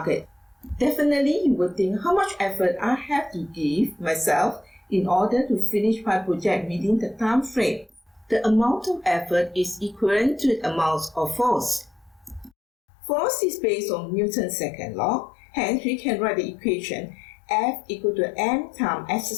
Definitely, you will think how much effort I have to give myself in order to finish my project within the time frame. The amount of effort is equivalent to the amount of force. Force is based on Newton's second law. Hence, we can write the equation F equal to m times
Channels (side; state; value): right; drops out; at 12.5 s